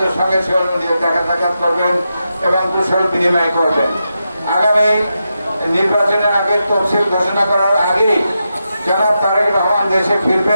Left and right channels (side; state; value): both; inverted; correlation -0.87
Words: সঙ্গে দেখা সাক্ষাৎ করবেন এবং কুশল বিনিময় করবেন। আগামী নির্বাচনের আগে তফসিল ঘোষণা করার আগেই জনাব তারেক রহমান দেশে